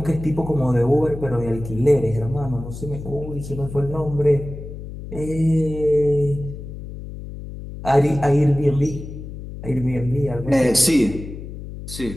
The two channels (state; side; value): noise; left; hum, 11 dB below the sound